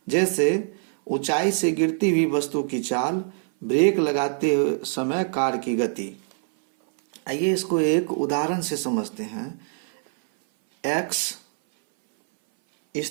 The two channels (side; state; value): left; silent; 60 dB below the other